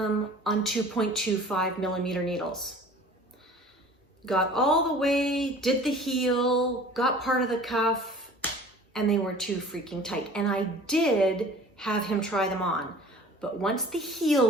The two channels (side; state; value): both; normal; correlation 0.45